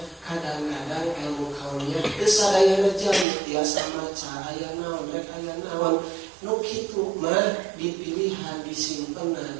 kadang-kadang ilmu kauniyah teu sadayana jami tiasa maca aya naon rek aya naon nu kitu mah dipilihan disimpenna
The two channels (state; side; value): drops out; left; at 3.2 s